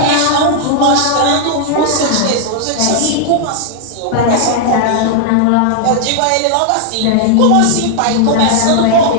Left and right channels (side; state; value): both; different; correlation 0.00